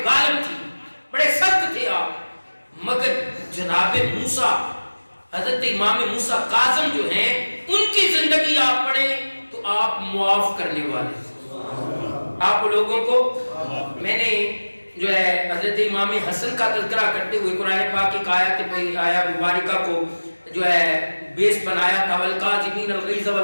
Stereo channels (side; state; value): both; inverted; correlation -1.00